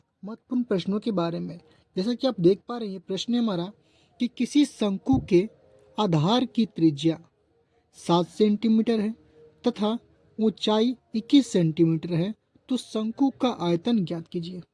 महत्वपूर्ण प्रश्नों के बारे में। जैसा कि आप देख पा रहे हैं, प्रश्न है हमारा कि किसी शंकु के आधार की त्रिज्या 7 सेंटीमीटर है तथा ऊंचाई 21 सेंटीमीटर है, तो शंकु का आयतन ज्ञात कीजिए।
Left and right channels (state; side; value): identical; both; correlation 1.00